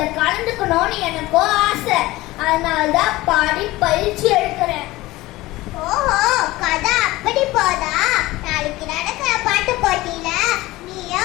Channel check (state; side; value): quieter; right; 18.8 dB